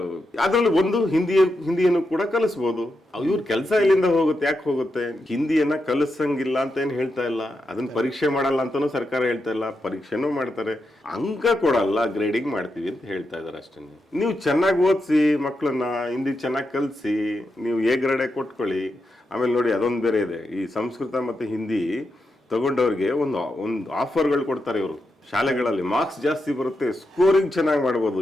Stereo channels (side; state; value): both; normal; correlation 0.86